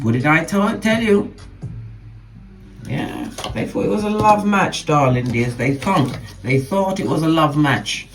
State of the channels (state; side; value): identical; both; correlation 1.00